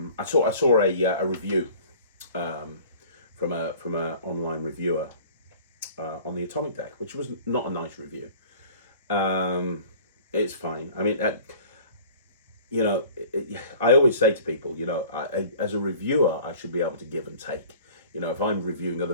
saw a review from a online reviewer on the atomic deck, which was not a nice review. It's fine. I mean, I always say to people, as a reviewer, I should be able to give and take. If I'm reviewing other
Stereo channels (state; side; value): inverted; both; correlation -0.46